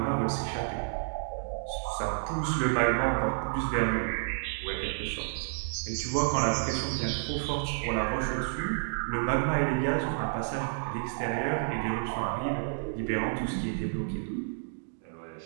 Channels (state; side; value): silent; left; digital silence